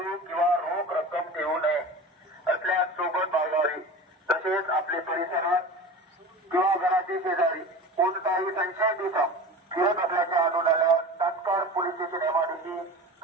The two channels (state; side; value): normal; both; correlation 0.33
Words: किंवा रोख रक्कम ठेवू नये असल्यास सोबत बाळगावी। तसेच आपले परिसरात किंवा घराचे शेजारी कोणताही संशयित इसम फिरत असल्याचे आढळून आल्यास तात्काळ पोलीस स्टेशन एमआयडीसी